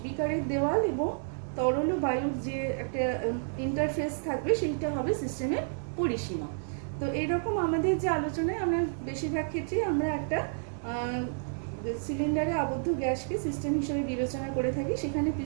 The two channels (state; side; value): silent; left; digital silence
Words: বিকারের দেওয়াল এবং তরল ও বায়ুর যে একটা ইন্টারফেস থাকবে সেইটা হবে সিস্টেমের পরিসীমা। তো এইরকম আমাদের যে আলোচনায় আমরা বেশিরভাগ ক্ষেত্রেই আমরা একটা সিলিন্ডারে আবদ্ধ গ্যাসকে সিস্টেম হিসেবে বিবেচনা করে থাকি। সেখানে